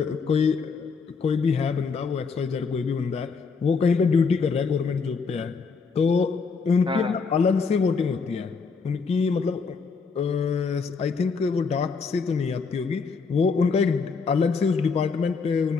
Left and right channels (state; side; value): quieter; right; 5.0 dB